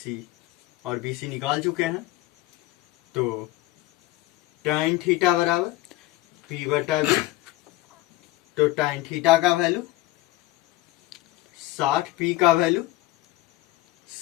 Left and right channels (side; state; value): right; quieter; 17.5 dB